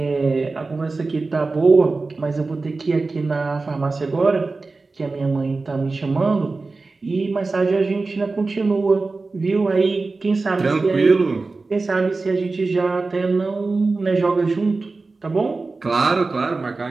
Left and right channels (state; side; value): quieter; left; 3.7 dB